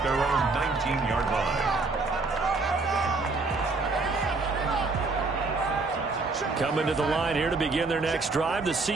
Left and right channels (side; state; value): left; quieter; 3.7 dB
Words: their own 19-yard line. Coming to the line here to begin their next drive, the